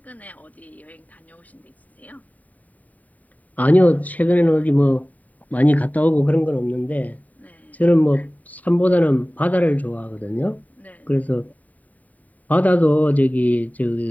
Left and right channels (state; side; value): late; right; 0.073 ms